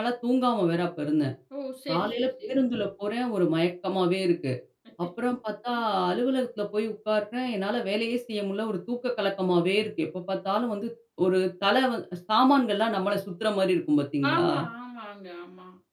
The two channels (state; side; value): identical; both; correlation 1.00